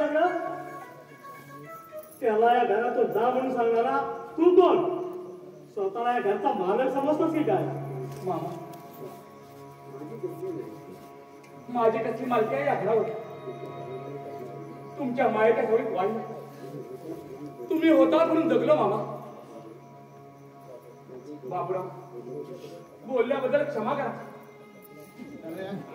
त्याला या घरातून जा म्हणून सांगणारा तू कोण स्वतःला या घरचा मालक समजतोस की काय मामा माझी कसली मालकी आहे या घरावर तुमच्या मायेच्या सवयीत वाढली तुम्ही होता म्हणून जगलो मामा बापरा बोलल्याबद्दल क्षमा करा अरे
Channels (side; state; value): both; identical; correlation 1.00